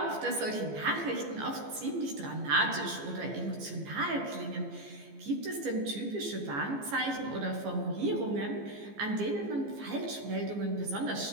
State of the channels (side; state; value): left; late; 14 ms